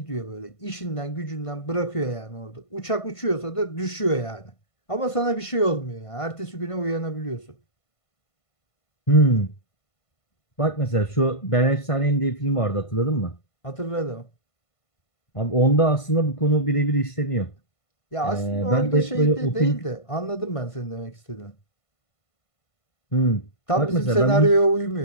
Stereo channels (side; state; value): right; late; 1.5 ms